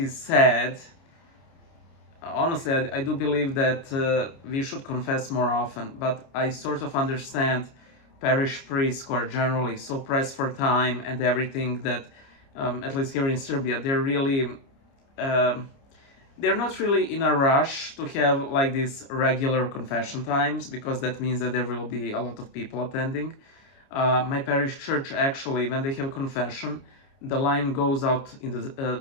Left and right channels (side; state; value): right; late; 29 ms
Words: sad. Honestly, I do believe that we should confess more often, but I sort of understand parish priests who are generally so pressed for time and everything that, at least here in Serbia, they're not really in a rush to have like these regular confession times, because that means that there will be a lot of people attending. My parish church, actually, when they have a confession, the line goes out to